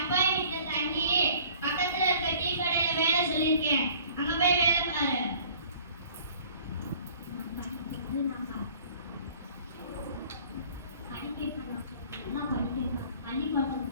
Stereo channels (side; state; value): both; inverted; correlation -0.52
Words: வீட்டு தங்கி பக்கத்துல இருக்க டீ கடையில வேலை சொல்லியிருக்கேன். அங்க போய் வேலை பாரு.